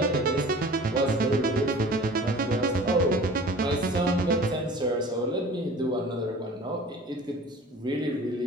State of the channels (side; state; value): both; normal; correlation 0.43